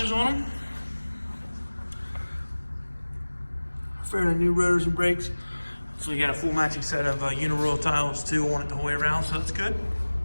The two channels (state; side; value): inverted; both; correlation -1.00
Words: on them. Fairly new rotors and brakes. So you got a full matching set of uniroyal tiles too on it the whole way around, so that's good.